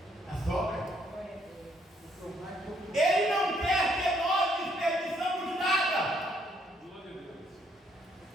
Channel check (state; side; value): normal; both; correlation 0.70